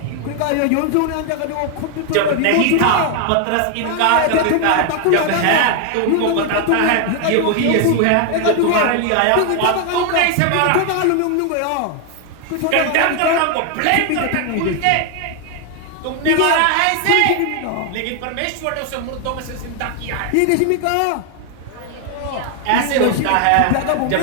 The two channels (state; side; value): different; both; correlation 0.00